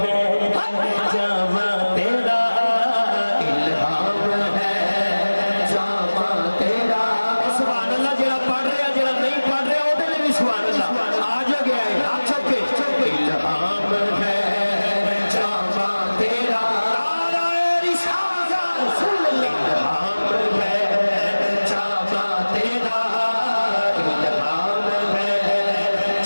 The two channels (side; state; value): both; inverted; correlation -1.00